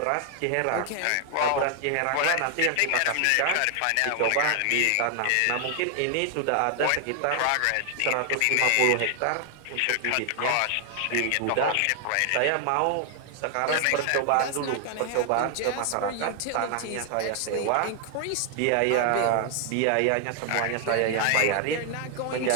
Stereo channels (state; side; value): different; both; correlation 0.00